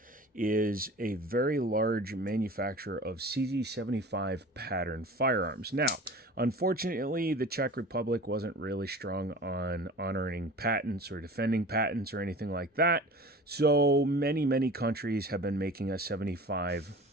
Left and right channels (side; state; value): both; normal; correlation 0.39